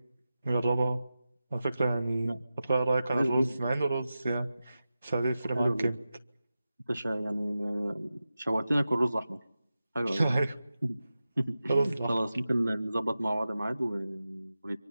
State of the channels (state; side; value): inverted; both; correlation -0.93